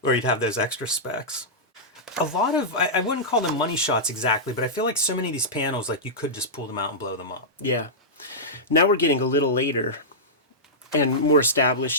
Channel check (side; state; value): both; normal; correlation -0.13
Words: or you'd have those extra specs. A lot of, I wouldn't call them money shots exactly, but I feel like so many of these panels, like you could just pull them out and blow them up. Yeah. Now we're getting a little later and more